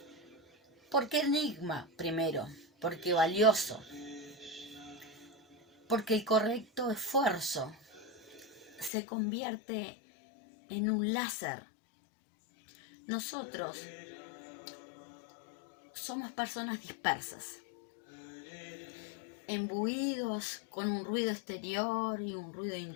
¿Por qué enigma? Primero, porque valioso, porque el correcto esfuerzo se convierte en un láser. Nosotros somos personas dispersas, embuidos con un ruido exterior y un ruido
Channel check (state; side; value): drops out; right; at 8.9 s